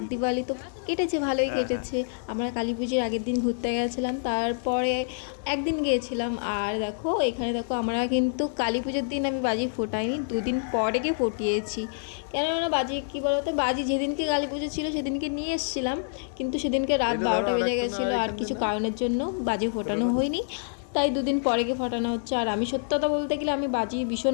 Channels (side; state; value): right; silent; digital silence